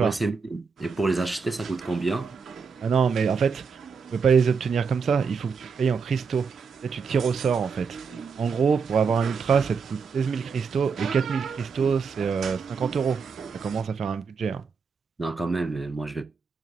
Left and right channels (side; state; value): left; quieter; 5.5 dB